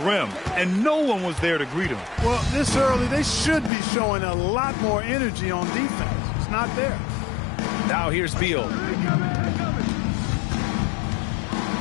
and no one was there to greet him. Well, this early, they should be showing a lot more energy on defense. It's not there. Now here's Beal.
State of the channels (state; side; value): drops out; right; at 3.7 s